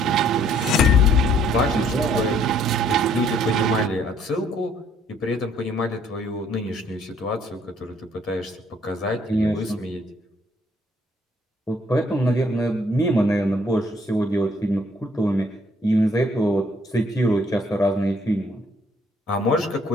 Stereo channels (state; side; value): normal; both; correlation 0.64